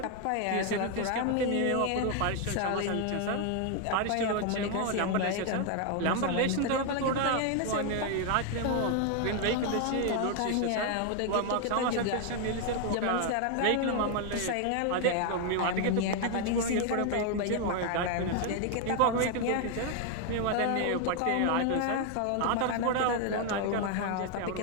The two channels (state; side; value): different; both; correlation 0.01